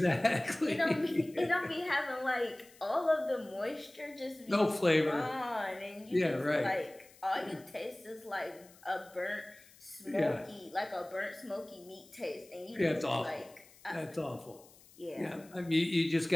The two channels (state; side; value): noise; left; hiss, 25 dB below the sound